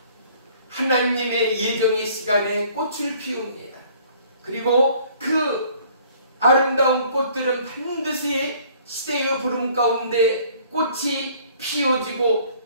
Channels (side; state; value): both; inverted; correlation -0.56